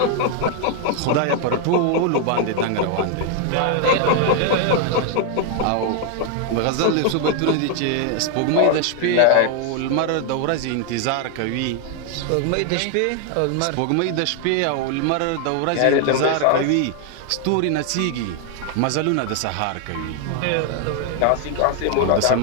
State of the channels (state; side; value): different; both; correlation 0.00